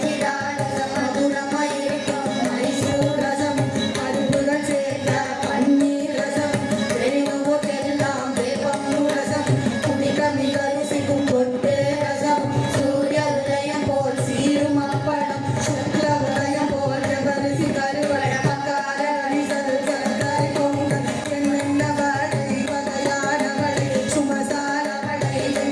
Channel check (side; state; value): both; identical; correlation 1.00